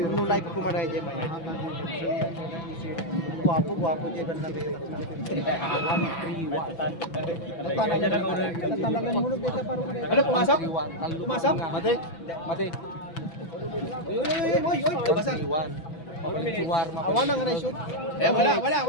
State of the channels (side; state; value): right; late; 6.0 ms